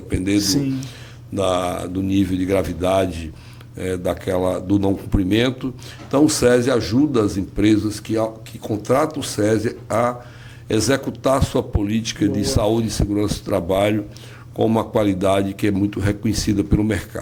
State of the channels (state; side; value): identical; both; correlation 1.00